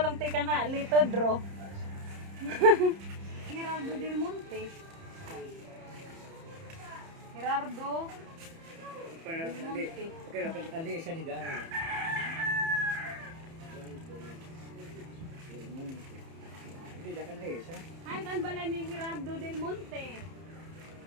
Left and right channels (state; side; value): late; left; 30 ms